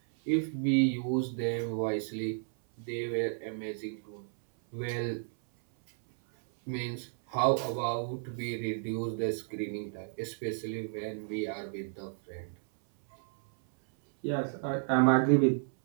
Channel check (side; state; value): left; silent; 56 dB below the other